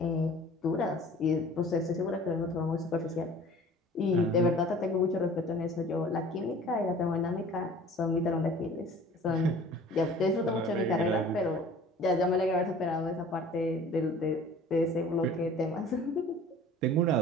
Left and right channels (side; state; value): both; normal; correlation 0.47